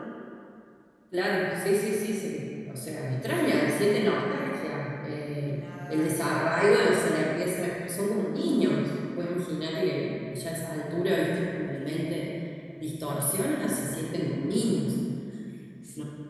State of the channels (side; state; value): both; identical; correlation 1.00